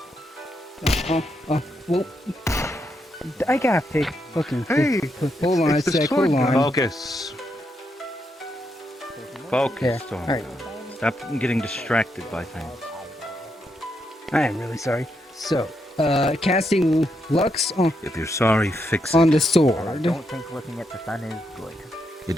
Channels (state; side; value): normal; both; correlation 0.81